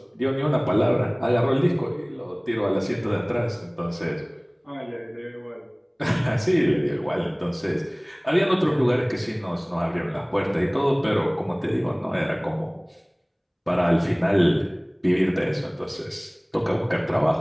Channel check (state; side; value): identical; both; correlation 1.00